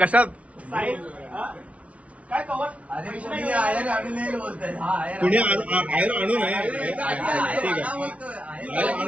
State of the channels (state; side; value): late; left; 0.064 ms